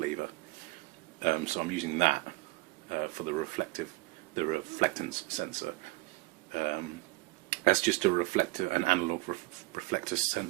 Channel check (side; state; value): left; quieter; 21.8 dB